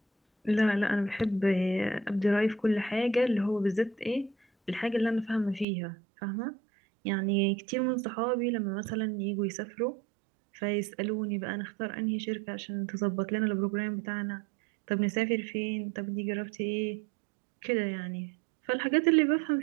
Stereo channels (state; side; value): drops out; left; at 5.7 s